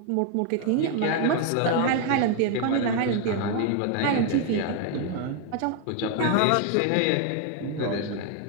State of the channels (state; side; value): different; both; correlation 0.01